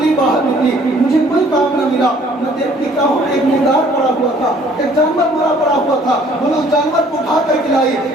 لیے باہر نکلی، مجھے کوئی کام نہ ملا، میں دیکھتی کیا ہوں ایک مردار پڑا ہوا تھا، ایک جانور مرا پڑا ہوا تھا، بولے اس جانور کو اٹھا کر کھلائی،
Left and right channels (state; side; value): normal; both; correlation 0.58